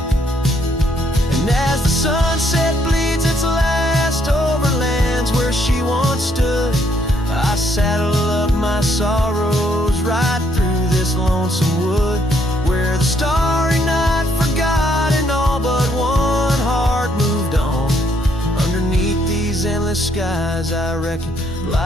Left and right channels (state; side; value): normal; both; correlation 0.70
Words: And as the sunset bleeds its last over lands where she once stood, I saddle up my sorrows right through this lonesome wood, where the starry night forgot and all but one heart moved on. Underneath these endless skies, I reckon